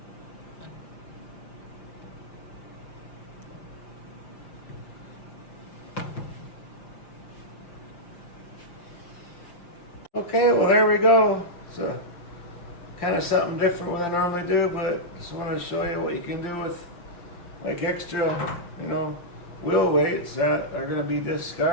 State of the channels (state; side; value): late; right; 5.8 ms